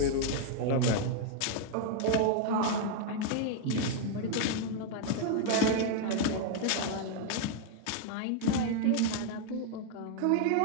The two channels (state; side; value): different; both; correlation 0.00